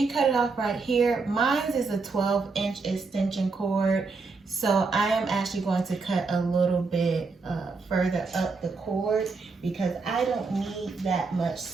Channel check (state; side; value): quieter; left; 4.2 dB